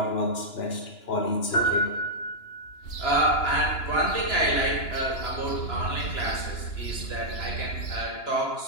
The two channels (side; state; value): right; late; 2.9 ms